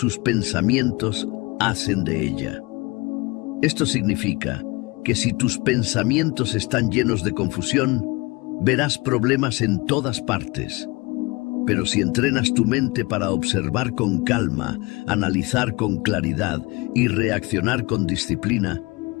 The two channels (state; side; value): quieter; right; 25.2 dB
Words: pensamientos hacen de ella. Esto significa que si tus pensamientos están llenos de confusión, verás problemas en todas partes. Pero si entrenas tu mente para observar con calma, analizar con claridad y reaccionar con disciplina,